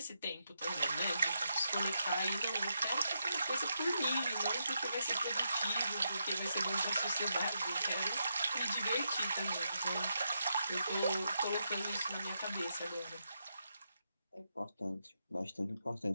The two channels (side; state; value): both; inverted; correlation -0.83